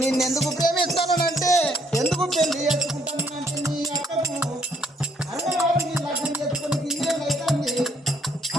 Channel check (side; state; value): both; normal; correlation 0.68